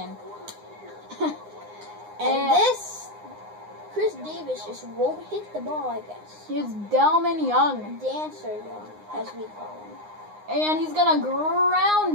And this, Chris Davis just won't hit the ball, I guess. Here's Delman Young. Dancer Young, as we call him. And he's going to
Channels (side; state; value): left; late; 9.7 ms